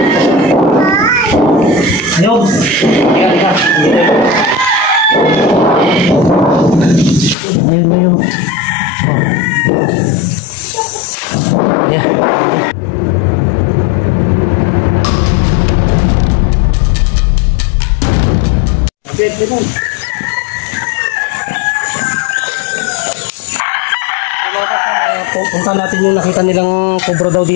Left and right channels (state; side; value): drops out; right; at 7.4 s